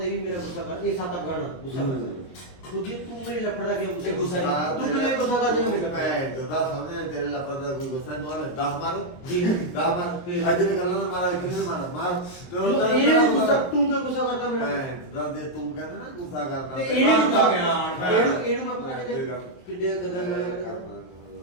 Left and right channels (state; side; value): late; right; 23 ms